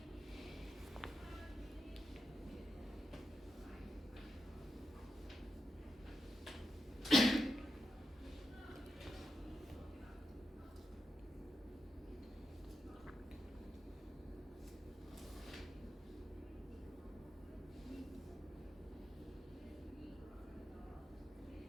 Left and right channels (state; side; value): normal; both; correlation 0.87